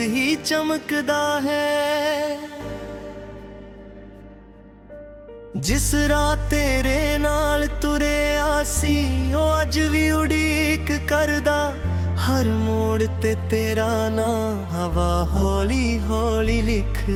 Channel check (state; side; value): identical; both; correlation 1.00